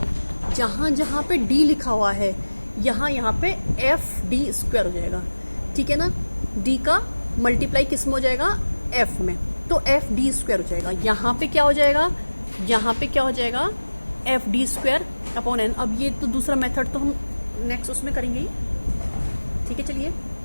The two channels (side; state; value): both; inverted; correlation -1.00